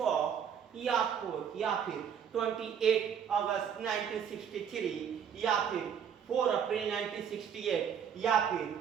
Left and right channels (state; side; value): quieter; left; 7.9 dB